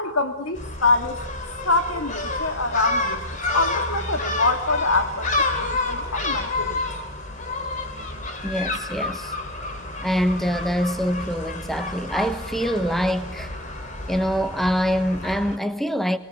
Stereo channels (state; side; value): normal; both; correlation 0.14